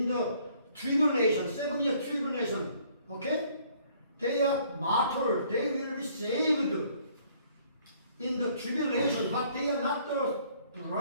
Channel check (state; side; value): inverted; both; correlation -0.61